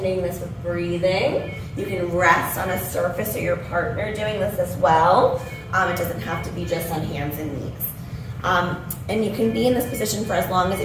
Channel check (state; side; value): identical; both; correlation 1.00